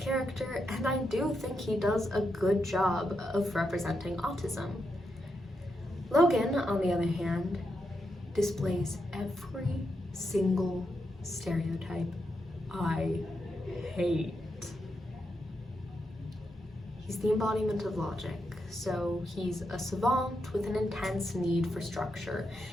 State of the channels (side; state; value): both; normal; correlation 0.84